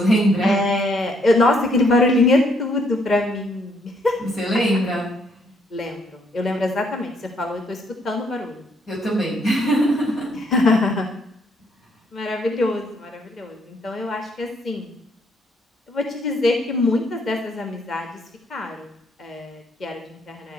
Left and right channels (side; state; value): both; normal; correlation 0.70